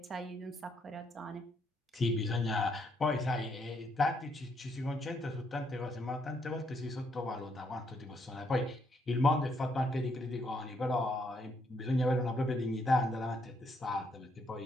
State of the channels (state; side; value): normal; both; correlation 0.74